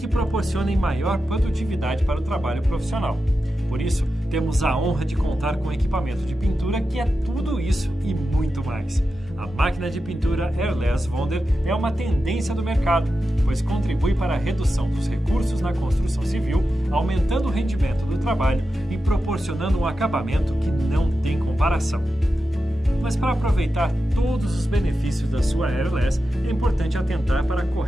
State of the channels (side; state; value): both; normal; correlation 0.91